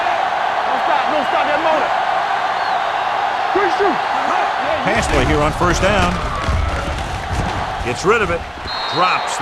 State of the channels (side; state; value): both; identical; correlation 1.00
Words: Pass play here on first down. Gets rid of it. Drops